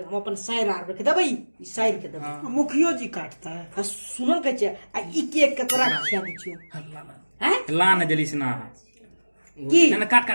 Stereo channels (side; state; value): both; inverted; correlation -1.00